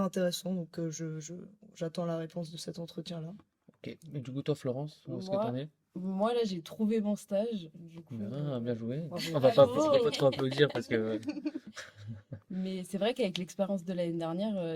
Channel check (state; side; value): identical; both; correlation 1.00